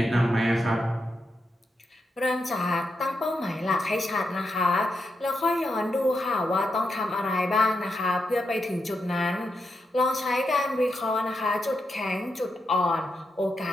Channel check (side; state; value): both; normal; correlation 0.85